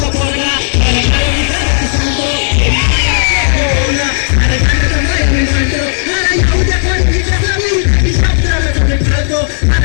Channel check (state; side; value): silent; right; 73 dB below the other